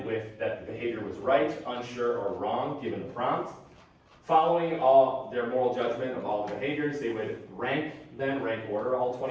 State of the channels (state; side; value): identical; both; correlation 1.00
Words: with that the behavior was right, unsure, or wrong, given the prompt. Following all their moral judgment of all the behaviors, they would rank order all